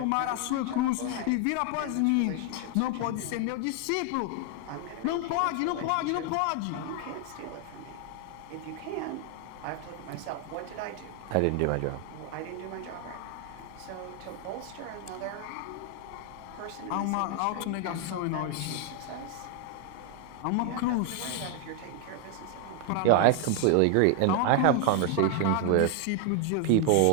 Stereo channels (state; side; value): different; both; correlation 0.00